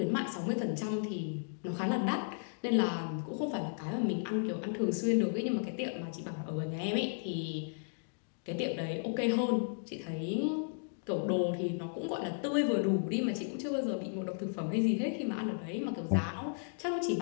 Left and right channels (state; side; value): silent; right; digital silence